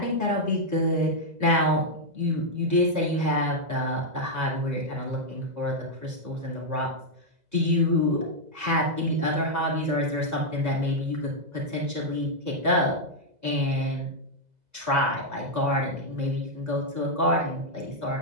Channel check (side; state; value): left; late; 2.0 ms